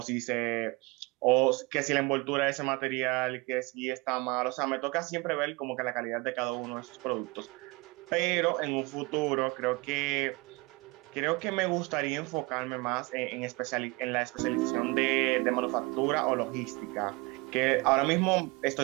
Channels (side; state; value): left; quieter; 25.8 dB